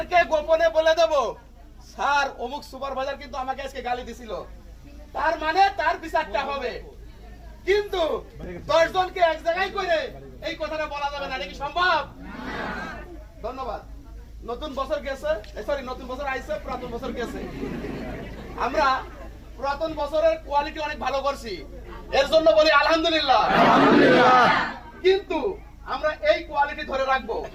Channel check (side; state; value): both; identical; correlation 1.00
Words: গোপনে বলে দেব, স্যার অমুক সুপারভাইজার কিন্তু আমাকে আজকে গালি দিছিল, তার মানে তার বিচারটা হবে। কিন্তু 10 জনকে এক জায়গায় করে এই কথাটা বলা যাবে না, এটা কি সম্ভব? ধন্যবাদ। নতুন বছর গেছে, সরি নতুন বছর আইছে, পুরাতন বছর গেছে। আমরা পুরাতন বছরের কোয়ালিটি অনেক ভালো করছি, এর জন্য বলি আলহামদুলিল্লাহ। কিন্তু আমরা এই কোয়ালিটি ধরে রাখবো,